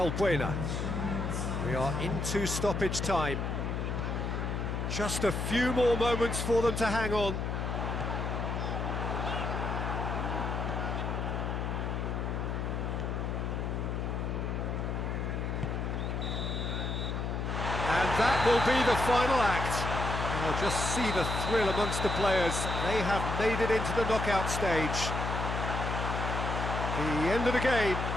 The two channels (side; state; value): left; noise; hum, 2 dB below the sound